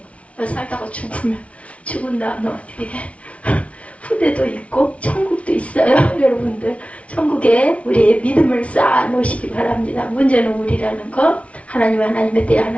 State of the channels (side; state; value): right; late; 0.063 ms